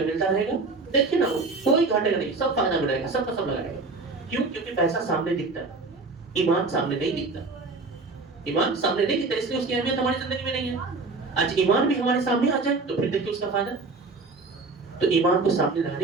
ملتا رہے گا, دیکھیے نا وہ کوئی گھاٹے گا نہیں, سب فائدہ ملے گا, سب کا سب لگائے گا. کیوں؟ کیونکہ پیسہ سامنے دکھتا ہے, ایمان سامنے نہیں دکھتا. ایمان سامنے نہیں دکھتا, اس لیے اس کی اہمیت ہماری زندگی میں نہیں ہے. آج ایمان بھی ہمارے سامنے آ جائے تو پھر دیکھیے اس کا فائدہ. تو ایمان کو سامنے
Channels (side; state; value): left; quieter; 3.7 dB